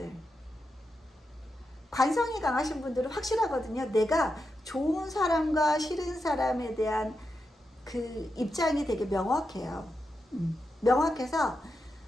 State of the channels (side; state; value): both; normal; correlation 0.87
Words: 관성이 강하신 분들은 확실하거든요. 내가 좋은 사람과 싫은 사람에 대한 그 입장이 되게 명확해요. 명확해서